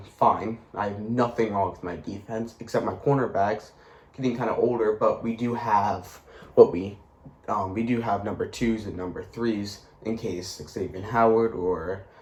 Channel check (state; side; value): identical; both; correlation 1.00